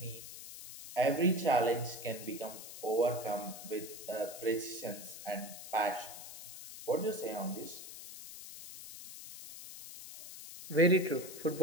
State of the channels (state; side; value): noise; left; hiss, 12 dB below the sound